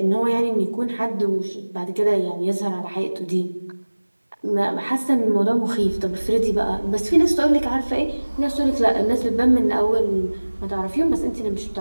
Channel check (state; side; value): inverted; both; correlation -1.00